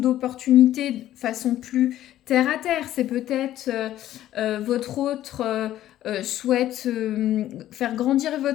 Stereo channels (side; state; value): right; quieter; 13.0 dB